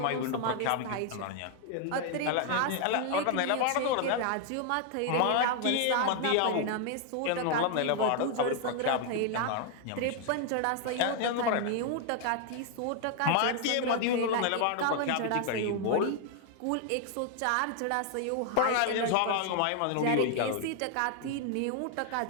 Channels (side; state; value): both; different; correlation 0.00